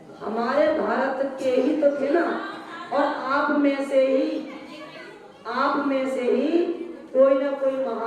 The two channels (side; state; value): both; identical; correlation 1.00